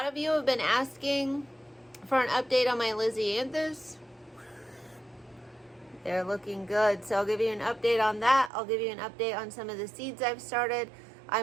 of you have been asking for an update on my Lisianthus. They're looking good, so I'll give you an update on that. I'll give you an update on some of the seeds I've started.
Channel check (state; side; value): drops out; left; at 8.5 s